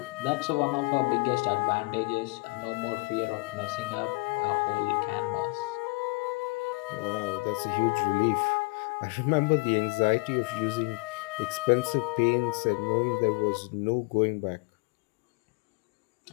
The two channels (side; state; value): right; quieter; 27.3 dB